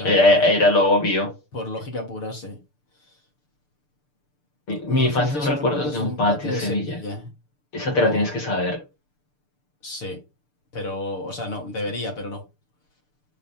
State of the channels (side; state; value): right; late; 6.8 ms